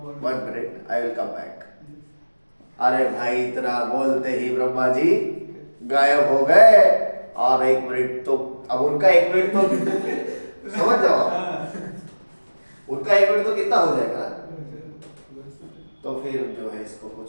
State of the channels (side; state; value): both; inverted; correlation -1.00